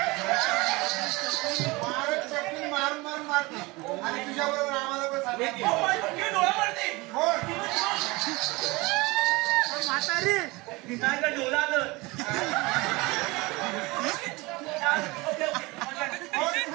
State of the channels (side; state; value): left; quieter; 23.4 dB